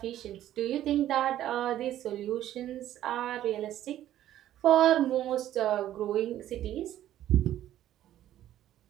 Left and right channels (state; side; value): quieter; left; 12.5 dB